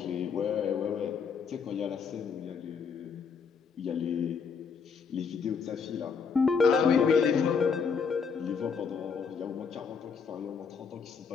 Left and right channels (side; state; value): right; quieter; 5.9 dB